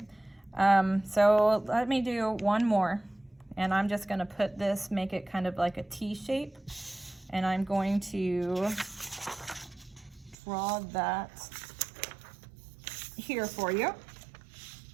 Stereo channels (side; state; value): left; drops out; at 10.4 s